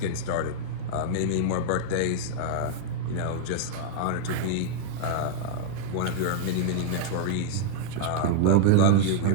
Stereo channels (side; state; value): both; different; correlation -0.01